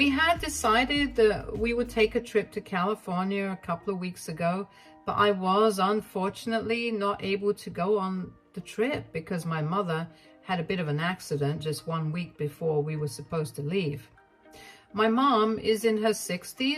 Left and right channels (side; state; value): both; identical; correlation 1.00